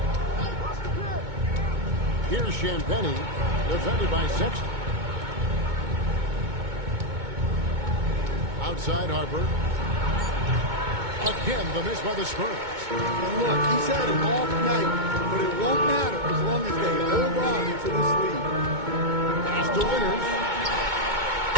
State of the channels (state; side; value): late; left; 2.2 ms